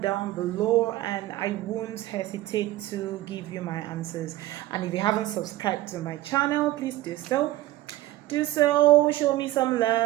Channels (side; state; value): left; quieter; 16.1 dB